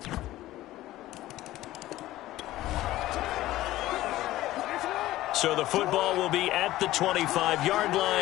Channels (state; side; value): quieter; right; 15.8 dB